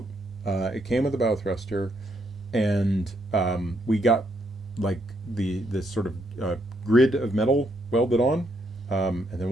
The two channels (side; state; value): both; normal; correlation 0.75